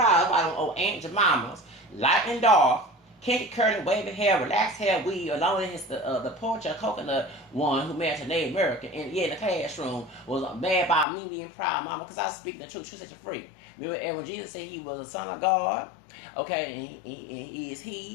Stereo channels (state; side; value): drops out; right; at 11.1 s